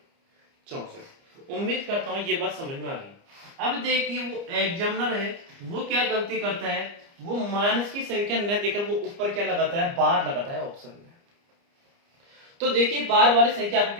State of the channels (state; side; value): late; left; 29 ms